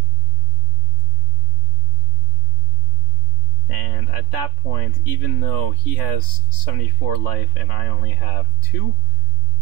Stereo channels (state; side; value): late; right; 3.5 ms